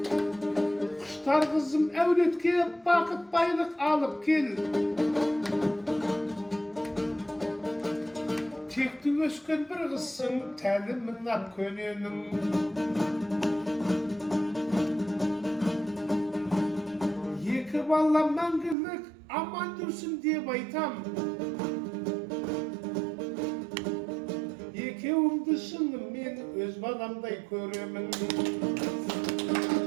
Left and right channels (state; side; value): drops out; left; at 18.8 s